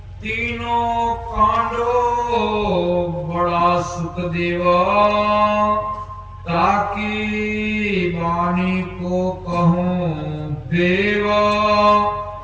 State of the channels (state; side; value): identical; both; correlation 1.00